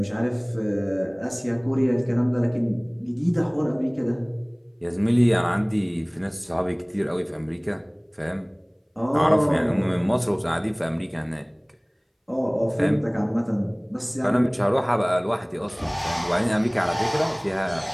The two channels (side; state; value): both; identical; correlation 1.00